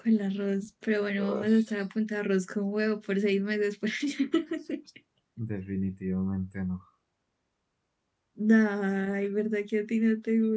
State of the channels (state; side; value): identical; both; correlation 1.00